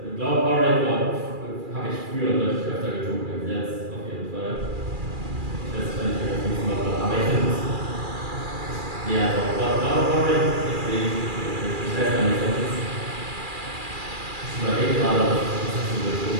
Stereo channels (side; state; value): left; late; 2.4 ms